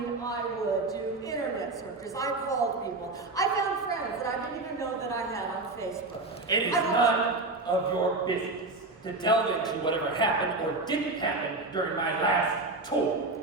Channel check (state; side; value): quieter; left; 3.2 dB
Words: do internet searches. I called people. I found friends that I didn't even know that I had on Facebook. It is none of your business to delve into whatever happened or didn't happen during my last tour.